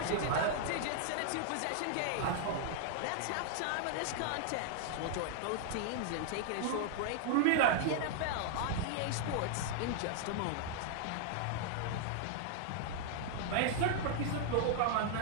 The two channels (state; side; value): different; both; correlation -0.01